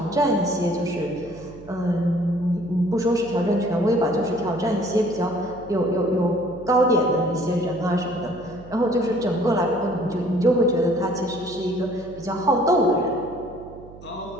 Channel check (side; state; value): right; noise; hum, 19 dB below the sound